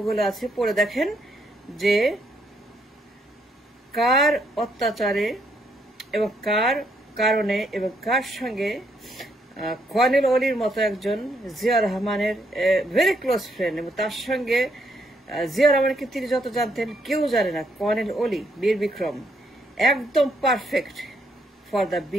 আছে, পড়ে দেখেন যে কার অত্যাচারে এবং কার কারণে এবং কার সঙ্গে কর্নেল অলির মতো একজন জিয়া রহমানের ভেরি ক্লোজ ফ্রেন্ড, এবং তার সঙ্গে জিয়া রহমানকে তিনি যত জানতেন কেউ জানে না। কর্নেল অলি বীর বিক্রম একদম perfect for the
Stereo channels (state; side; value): normal; both; correlation 0.74